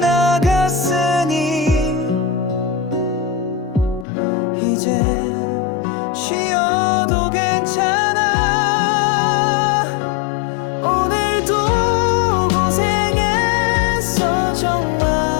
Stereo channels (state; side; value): drops out; right; at 4.0 s